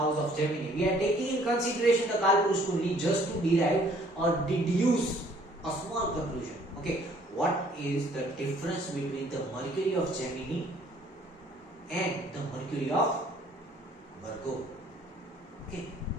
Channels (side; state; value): both; normal; correlation 0.59